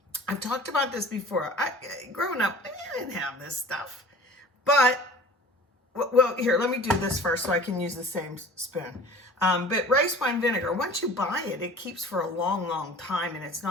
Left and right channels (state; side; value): normal; both; correlation 0.44